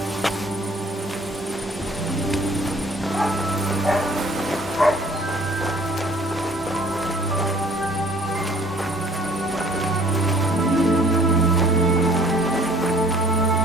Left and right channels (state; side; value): normal; both; correlation 0.55